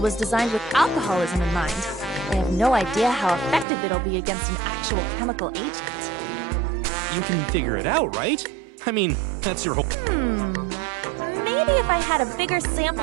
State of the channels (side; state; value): left; drops out; at 3.7 s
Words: was designed with alcoholism in mind. I have no idea how effective it'll be against an actual chemical agent. You can figure it out, right? I mean, that's your whole... Maybe if I had a bigger